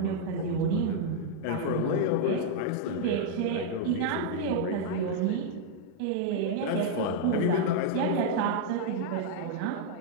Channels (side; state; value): both; different; correlation -0.01